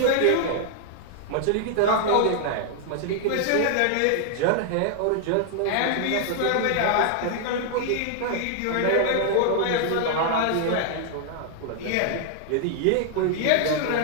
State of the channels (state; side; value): different; both; correlation 0.00